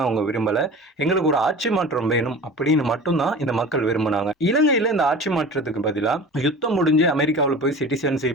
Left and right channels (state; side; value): normal; both; correlation 0.37